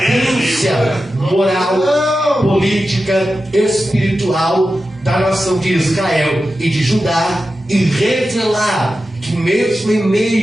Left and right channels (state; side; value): normal; both; correlation 0.92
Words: moral, política, espiritual da nação de Israel e de Judá, e revelar que mesmo em